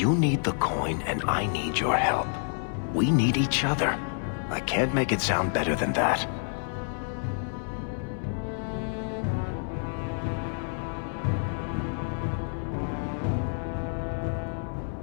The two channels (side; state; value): right; silent; 59 dB below the other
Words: need the coin, and I need your help. We need each other. I can't make it sound better than that.